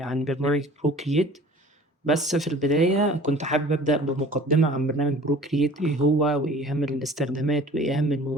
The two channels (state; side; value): normal; both; correlation 0.46